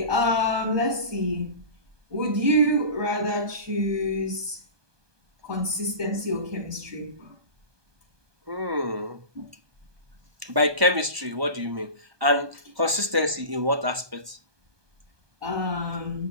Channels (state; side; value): late; left; 1.2 ms